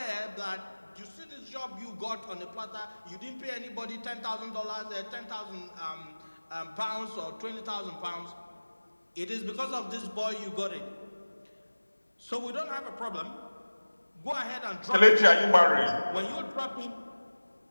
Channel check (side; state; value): both; inverted; correlation -1.00